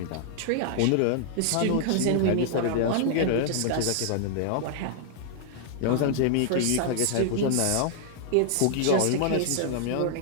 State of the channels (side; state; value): both; different; correlation -0.01